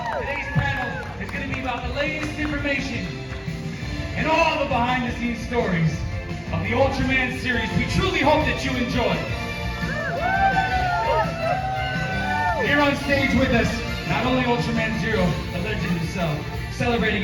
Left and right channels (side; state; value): both; identical; correlation 1.00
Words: Today's panel is going to be about the latest information and all the behind-the-scenes stories of the Ultraman series. We truly hope that you enjoy. Here on stage with us, not only Ultraman Zero, the legend himself, celebrating